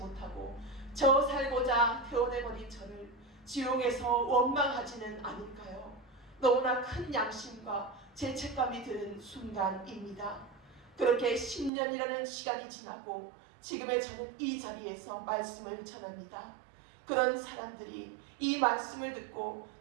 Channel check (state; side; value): drops out; left; at 11.7 s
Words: 저 살고자 태어내버린 저를 지옥에서 원망하지는 않을까요? 너무나 큰 양심과 죄책감이 드는 순간입니다. 그렇게 10년이라는 시간이 지나고 지금의 저는 이 자리에서 말씀을 전합니다. 그런 사람들이 이 말씀을 듣고